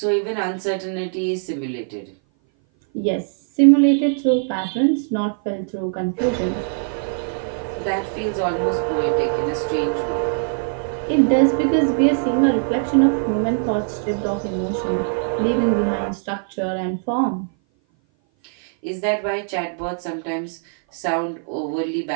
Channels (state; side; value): silent; left; 58 dB below the other